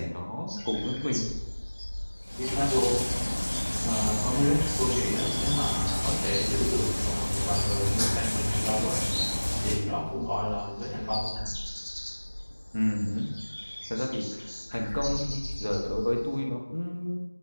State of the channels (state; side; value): inverted; both; correlation -1.00